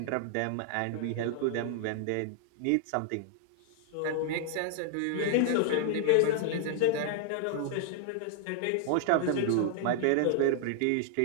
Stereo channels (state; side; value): different; both; correlation 0.00